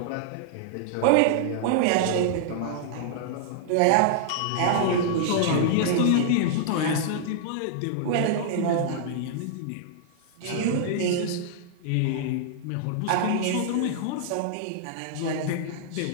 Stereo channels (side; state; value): both; different; correlation -0.01